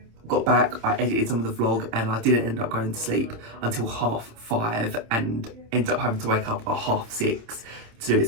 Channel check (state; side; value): late; left; 27 ms